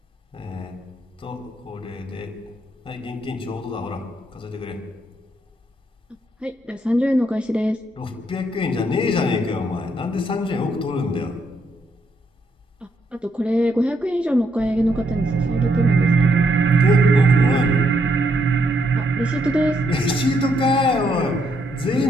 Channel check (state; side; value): normal; both; correlation 0.75